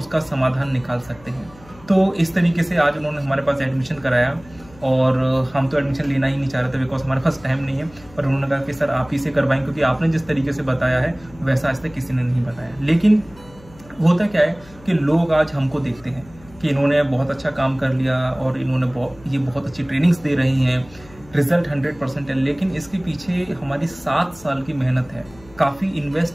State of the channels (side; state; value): left; noise; hum, 23 dB below the sound